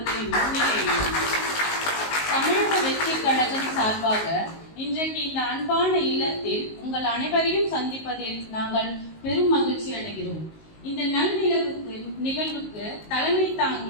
முன்னிலையில் தமிழக வெற்றி கழகம் சார்பாக இன்றைக்கு இந்த அன்பான இல்லத்தில் உங்கள் அனைவரையும் சந்திப்பதில் நாங்கள் பெரும் மகிழ்ச்சி அடைகிறோம். இந்த நல் நிகழ்வுக்கு தலைமை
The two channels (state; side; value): late; right; 19 ms